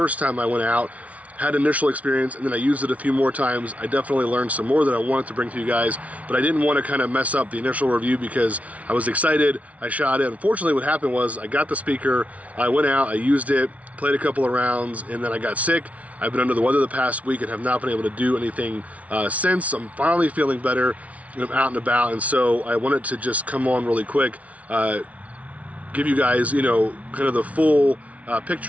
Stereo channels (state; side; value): late; left; 0.067 ms